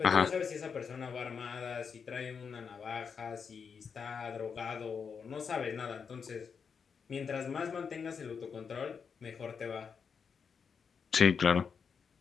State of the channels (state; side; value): quieter; right; 6.2 dB